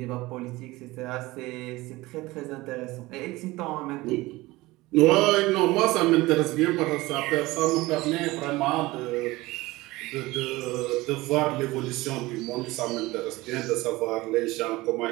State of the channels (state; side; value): quieter; left; 20.0 dB